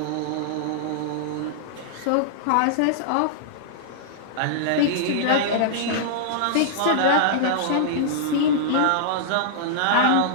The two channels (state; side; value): different; both; correlation -0.02